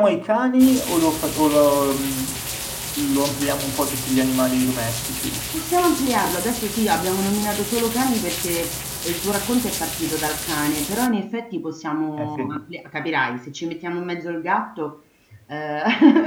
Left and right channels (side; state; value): both; identical; correlation 1.00